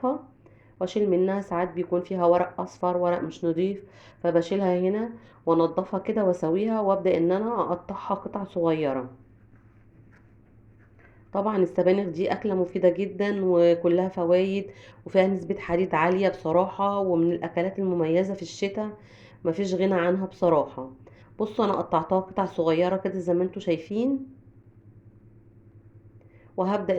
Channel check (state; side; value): identical; both; correlation 1.00